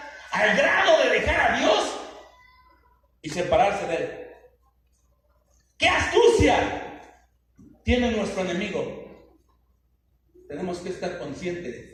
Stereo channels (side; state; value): both; identical; correlation 1.00